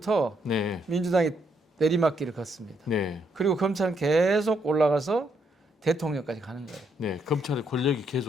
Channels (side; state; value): both; normal; correlation 0.75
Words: 네. 민주당이 내리막길을 걷습니다. 네. 그리고 검찰은 계속 올라가서 대통령까지 가는 거예요. 네. 검찰의 권력이